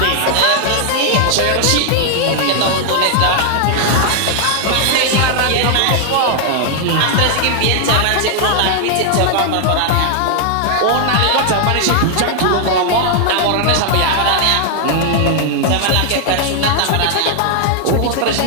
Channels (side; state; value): both; different; correlation 0.00